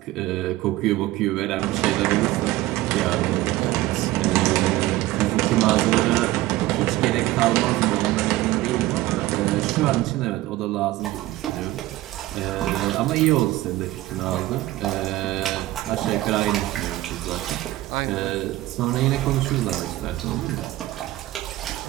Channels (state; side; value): quieter; left; 16.9 dB